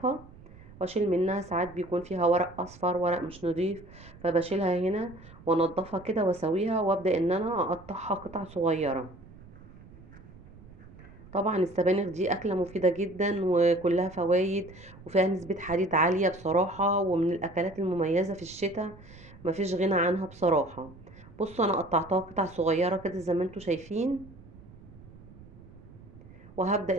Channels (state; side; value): noise; right; rumble, 20 dB below the sound